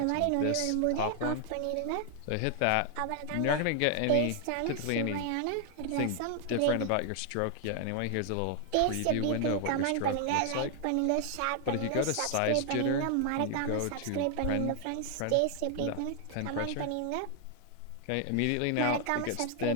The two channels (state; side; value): different; both; correlation 0.00